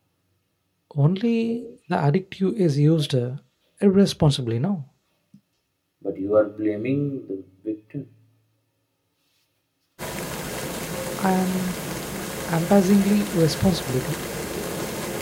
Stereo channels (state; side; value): identical; both; correlation 1.00